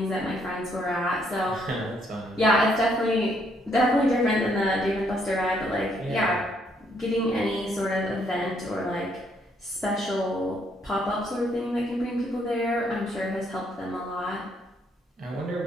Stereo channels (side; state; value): both; normal; correlation 0.71